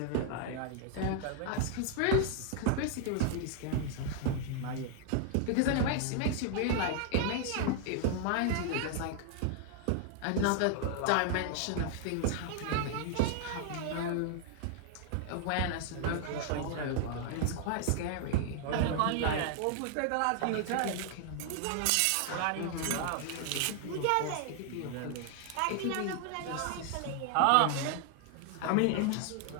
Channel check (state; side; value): different; both; correlation 0.00